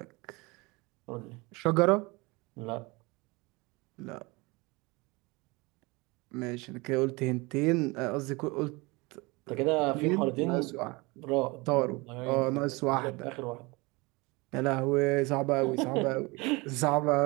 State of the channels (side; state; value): left; quieter; 25.2 dB